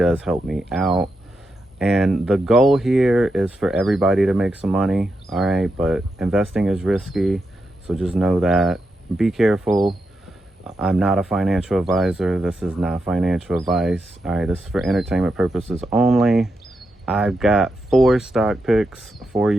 help me out. And the goal here is for everybody to make some money, all right? But investing is risky, so just know that. Be careful. I'm not a financial advisor. This is not financial advice, all right? This is for entertainment purposes only. I've got 4 stock picks for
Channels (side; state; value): both; normal; correlation 0.86